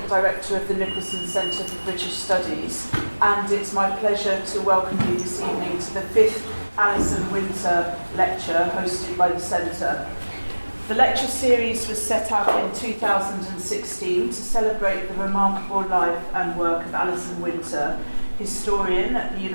director of the Nicholson Centre for British Studies. And it's my pleasure to welcome you this evening to the 5th Alison Winter Lecture hosted by the Centre. The lecture series was set up in 2016 to celebrate the remarkable life and work of Alison Winter, historian at the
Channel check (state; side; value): inverted; both; correlation -1.00